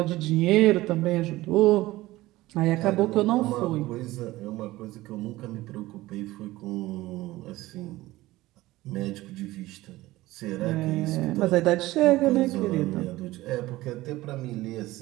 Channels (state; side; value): quieter; left; 17.9 dB